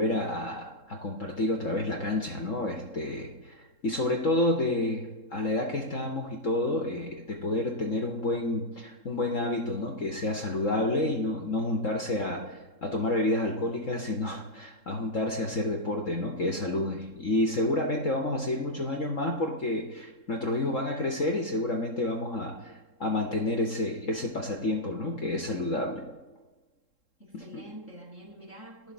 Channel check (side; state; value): right; late; 3.7 ms